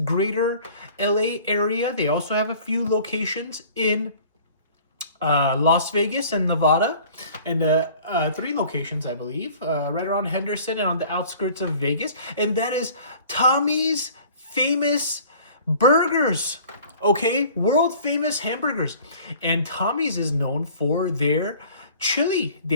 LA area. They also have a few locations in Las Vegas and Nevada, and 3 locations, I believe, right around Henderson and on the outskirts of Vegas. And that is Tommy's Famous Burgers, okay? World famous hamburgers. And Tommy's is known for their chili.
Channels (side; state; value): both; inverted; correlation -0.48